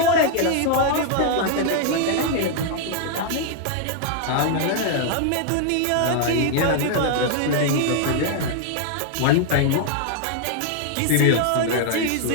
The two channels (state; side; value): different; both; correlation 0.00